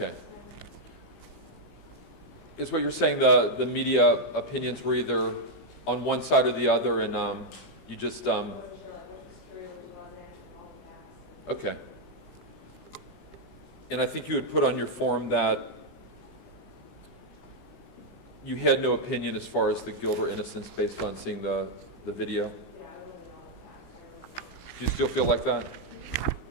Is what you're saying the media opinions were either on one side or the other, and you just I wasn't sure like what was true, what wasn't, all of that. okay. And I think you had put on your form that you had no opinion as far as the guilt or innocence based on seeing the video. Yeah, I really know all of that. Do you still feel like that?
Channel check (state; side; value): late; right; 15 ms